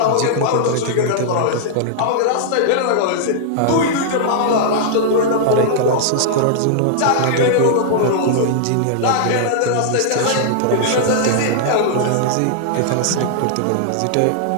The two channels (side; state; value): both; different; correlation -0.01